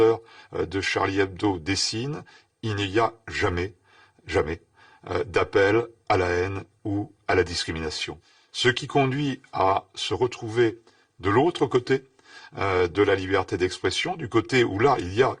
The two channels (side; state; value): both; identical; correlation 1.00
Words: de Charlie Hebdo dessinent, il n'y a jamais d'appel à la haine ou à la discrimination. Ce qui conduit à se retrouver de l'autre côté de la liberté d'expression, du côté où là il y a